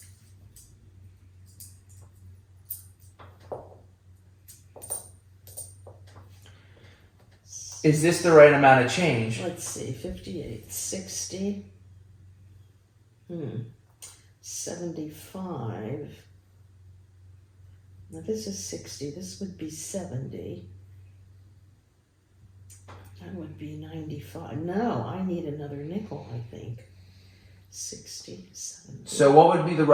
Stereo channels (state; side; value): identical; both; correlation 1.00